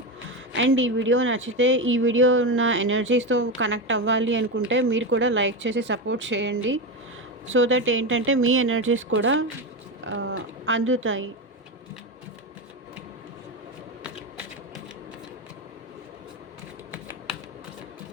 అండ్ ఈ వీడియో నచ్చితే, ఈ వీడియో ఉన్న ఎనర్జీస్తో కనెక్ట్ అవ్వాలి అనుకుంటే మీరు కూడా లైక్ చేసి సపోర్ట్ చేయండి. సో దట్ ఏంటంటే మీ ఎనర్జీస్ కూడా అందుతాయి.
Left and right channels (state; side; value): normal; both; correlation 0.16